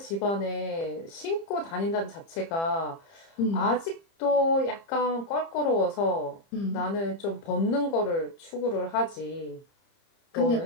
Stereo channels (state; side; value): late; right; 30 ms